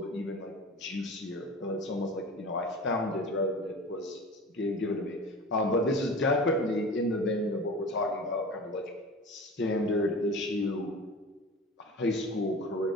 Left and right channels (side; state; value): both; normal; correlation 0.35